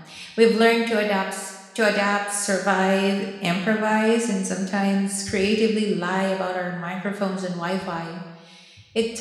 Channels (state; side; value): identical; both; correlation 1.00